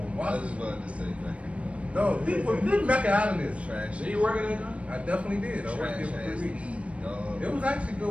Washington. just wanted to say Mecca. No, leave Mecca out of this. Trash. Did you work at that joint? I definitely did. I worked there Trash for ass 3 weeks. weed, dog. It was actually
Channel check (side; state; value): left; late; 0.063 ms